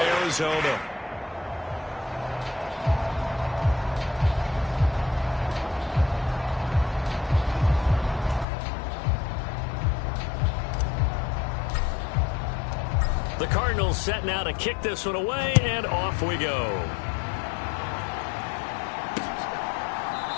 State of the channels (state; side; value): drops out; right; at 8.5 s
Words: Arizona. The Cardinals set now to kick this one away, and off we go.